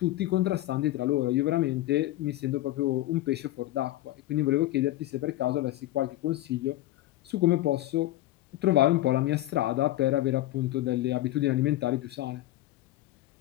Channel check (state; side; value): quieter; right; 15.8 dB